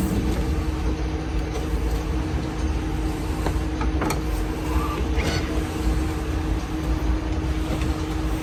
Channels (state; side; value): identical; both; correlation 1.00